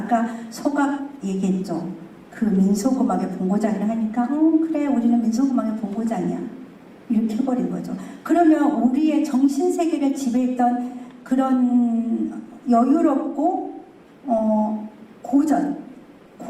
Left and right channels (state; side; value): identical; both; correlation 1.00